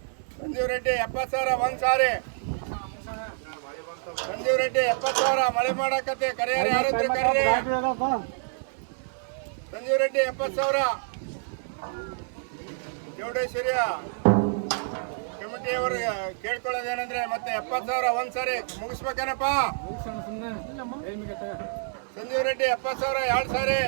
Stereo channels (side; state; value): left; silent; 60 dB below the other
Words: ಸಂಜೀವ್ ರೆಡ್ಡಿ 70,000 ಒಂದು ಸಾರಿ. ಸಂಜೀವ್ ರೆಡ್ಡಿ 70,000. ಮಳೆ ಮಾಡಕತ್ತೆ, ಕರೆಯರು ಯಾರಿದ್ರೆ ಕರೀರಿ. ಸಂಜೀವ್ ರೆಡ್ಡಿ 70,000. ಚೌಡೇಶ್ವರಿಯ ಕಮಿಟಿಯವರು ಕೇಳ್ಕೊಳ್ಳೋದೇನಂದ್ರೆ ಮತ್ತೆ 70,000 ಒಂದು ಸಾರಿ ಮುಗಿಸ್ಬೇಕೇನಪ್ಪ. ಸಂಜೀವ್ ರೆಡ್ಡಿ 70,000 2 ಸಾರಿ.